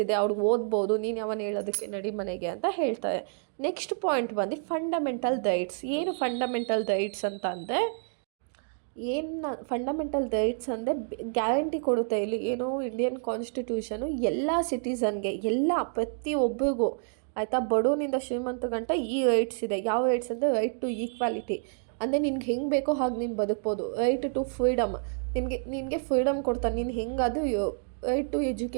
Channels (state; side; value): silent; left; 59 dB below the other